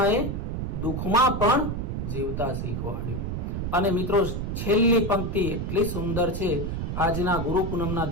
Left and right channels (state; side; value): noise; right; rumble, 3 dB below the sound